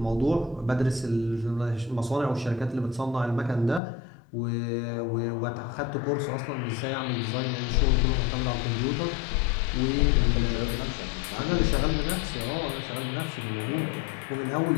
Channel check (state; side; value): drops out; right; at 3.8 s